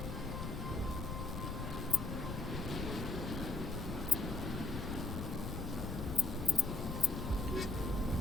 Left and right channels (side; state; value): left; noise; rumble, 4 dB below the sound